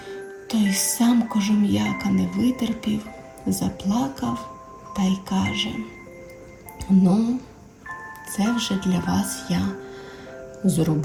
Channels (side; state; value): both; identical; correlation 1.00